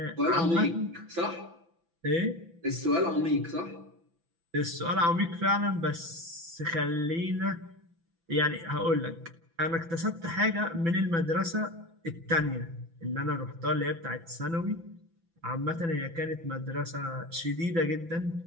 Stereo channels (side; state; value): left; late; 6.0 ms